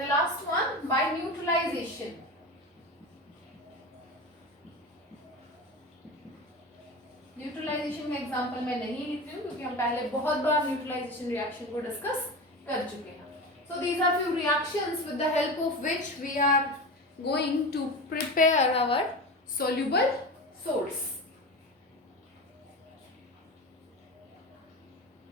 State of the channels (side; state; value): both; normal; correlation 0.27